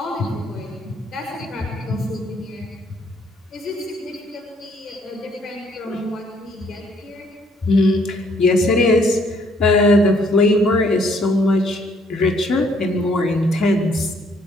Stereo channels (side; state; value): both; normal; correlation 0.65